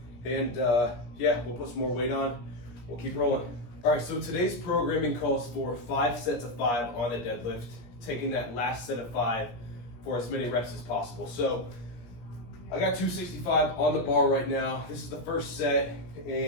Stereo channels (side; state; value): right; late; 17 ms